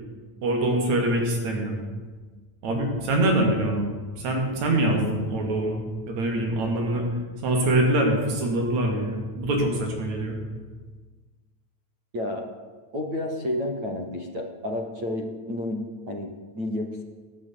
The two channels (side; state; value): left; late; 9.0 ms